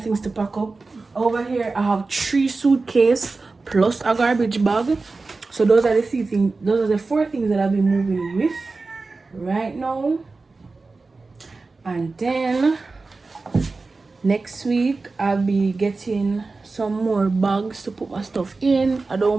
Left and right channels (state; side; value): quieter; left; 3.8 dB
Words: things to pack up. Over here I have 3 suitcases plus a garbage bag. So those are the things. Those are the 4 things that I'll be moving with right now. And then next week I'll be getting some more bags to put my stuff in. I